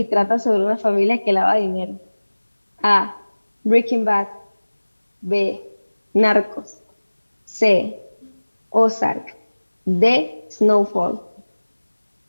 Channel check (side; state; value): both; inverted; correlation -1.00